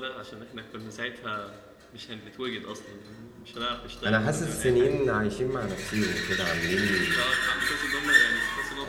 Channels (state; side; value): identical; both; correlation 1.00